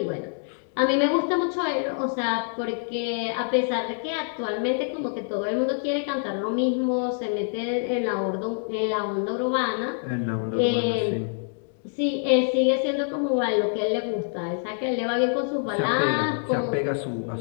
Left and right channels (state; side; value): silent; right; digital silence